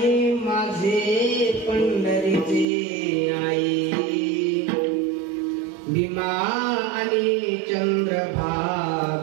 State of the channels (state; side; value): drops out; left; at 2.7 s